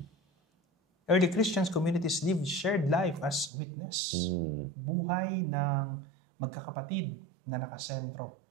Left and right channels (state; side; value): drops out; left; at 3.5 s